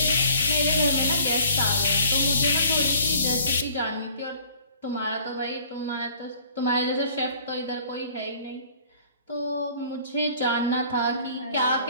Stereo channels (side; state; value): both; inverted; correlation -0.54